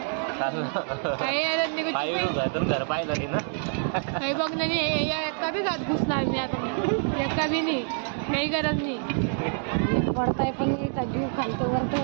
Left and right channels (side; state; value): left; silent; 60 dB below the other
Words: काही गरज नाही घर पाहिलं नाही ना. काही बघ नाही एका बी घात घुसणार नाही आता. एका बी नाही काही गरज नाही. पडताय पण नाही का जीव खालतो